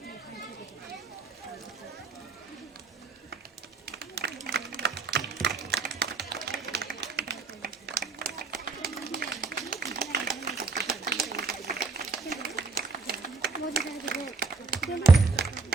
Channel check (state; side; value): quieter; left; 4.0 dB